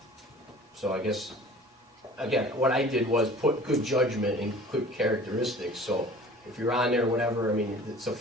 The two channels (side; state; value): both; normal; correlation 0.46